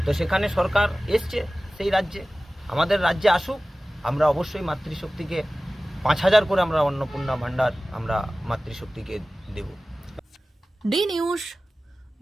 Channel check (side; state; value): both; normal; correlation 0.97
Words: তো সেখানে সরকার এসছে সেই রাজ্যে, আমাদের রাজ্যে আসুক, আমরা অবশ্যই মাতৃশক্তিকে ৫,০০০ করে আমরা অন্নপূর্ণা ভান্ডার আমরা মাতৃশক্তিকে দেব। D news,